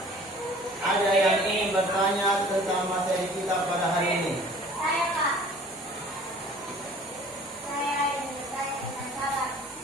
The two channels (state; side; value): normal; both; correlation 0.49